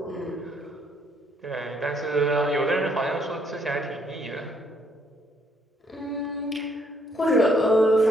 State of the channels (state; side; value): normal; both; correlation 0.70